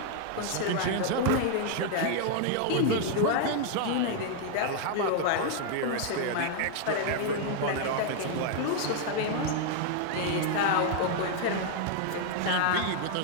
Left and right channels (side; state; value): both; different; correlation 0.00